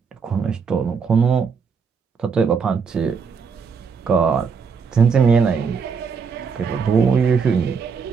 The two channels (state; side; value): quieter; left; 5.8 dB